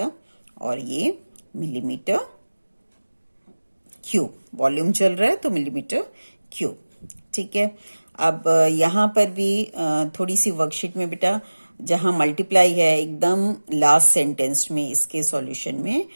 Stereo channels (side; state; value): both; inverted; correlation -1.00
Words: और ये मिलीमीटर क्यूब, वॉल्यूम चल रहा है तो मिलीमीटर क्यूब। ठीक है, अब यहाँ पर भी थोड़ी सी वर्कशीट में बेटा जहाँ मल्टीप्लाई है एकदम लास्ट सेंटेंस में इसके सॉल्यूशन में,